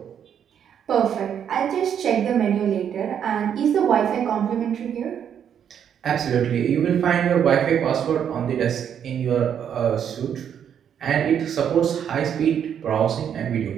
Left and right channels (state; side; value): quieter; left; 8.6 dB